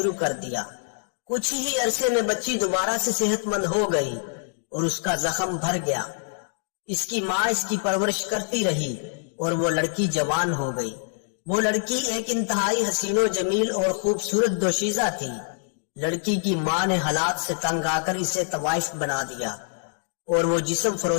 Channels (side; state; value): right; silent; digital silence